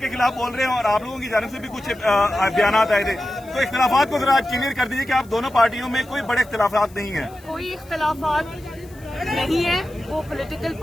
खिलाफ बोल रहे हैं और आप लोगों की जानिब से भी कुछ बयान आए थे, तो इख्तिलाफात को जरा क्लियर कर दीजिए कि आप दोनों पार्टियों में कोई बड़े इख्तिलाफात नहीं है। कोई इख्तिलाफात नहीं है, वो पॉलिटिकल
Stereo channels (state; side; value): noise; left; hiss, 26 dB below the sound